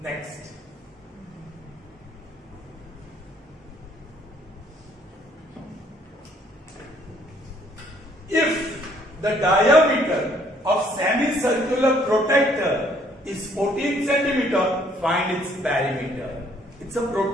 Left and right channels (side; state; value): both; normal; correlation 0.64